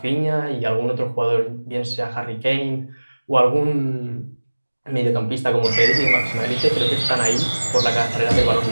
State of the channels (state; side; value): inverted; both; correlation -1.00